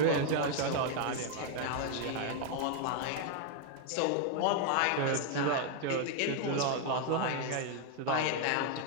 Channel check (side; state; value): both; different; correlation 0.00